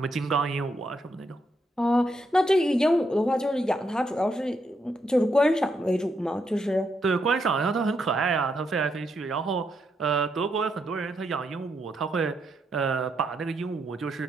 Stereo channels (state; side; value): normal; both; correlation 0.79